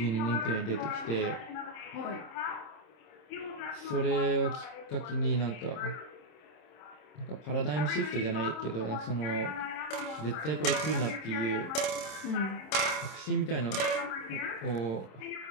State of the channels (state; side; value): late; right; 26 ms